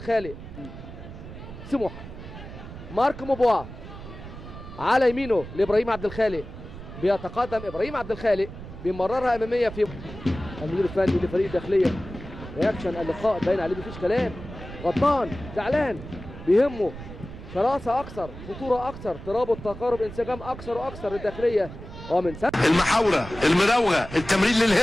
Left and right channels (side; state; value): right; noise; rumble, 13 dB below the sound